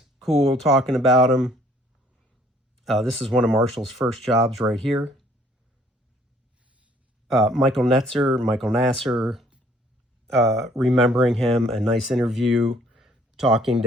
cool, talking about him. This is one of Marshall's first jobs right here. Michael Nasser, remembering him, a nice interview, talking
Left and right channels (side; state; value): both; normal; correlation 0.60